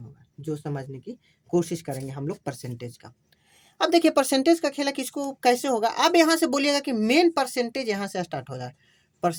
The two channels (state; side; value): identical; both; correlation 1.00